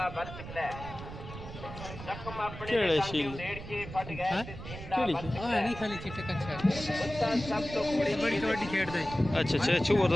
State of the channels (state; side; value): noise; right; rumble, 11 dB below the sound